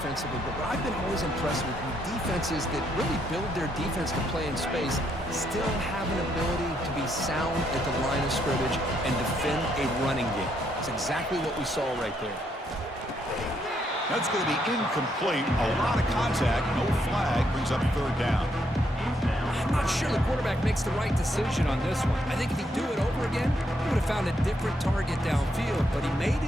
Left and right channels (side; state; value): both; normal; correlation 0.75